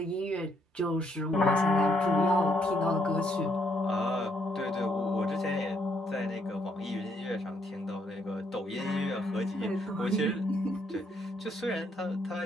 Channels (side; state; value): both; normal; correlation 0.72